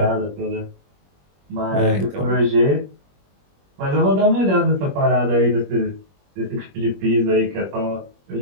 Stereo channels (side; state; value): left; late; 21 ms